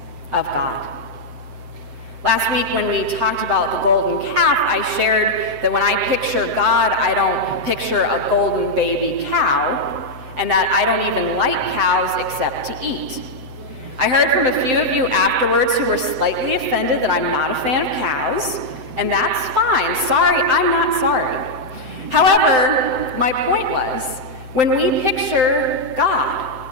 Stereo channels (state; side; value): late; left; 7.8 ms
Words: of God. Last week when we talked about the golden calf, I shared that when I picture God, I don't picture a golden baby cow, and that I don't even like cows except to eat. I heard from a few of you afterwards who were slightly offended that I'm not a fan of cows, and that's fine. Sorry, I'm not sorry. However, my point was, when we picture God,